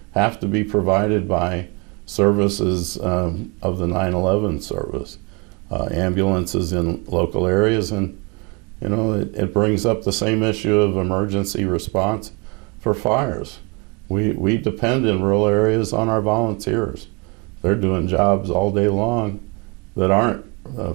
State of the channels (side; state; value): left; quieter; 29.3 dB